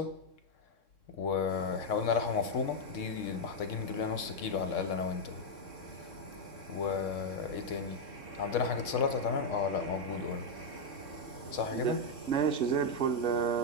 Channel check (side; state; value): right; late; 3.6 ms